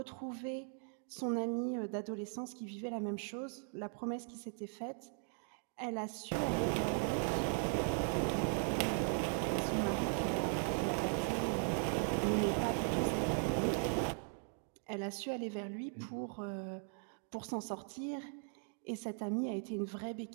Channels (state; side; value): silent; left; 52 dB below the other